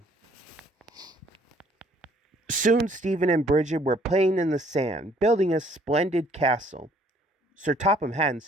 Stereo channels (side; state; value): both; normal; correlation 0.61